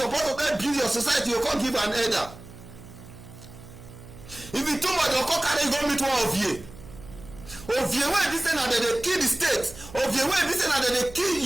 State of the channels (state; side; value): noise; right; hum, 17 dB below the sound